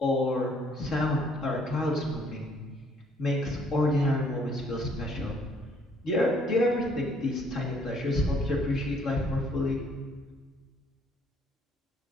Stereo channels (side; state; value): both; normal; correlation 0.64